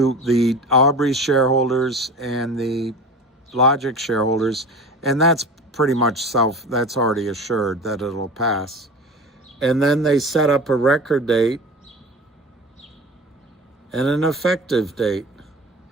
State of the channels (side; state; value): both; normal; correlation 0.35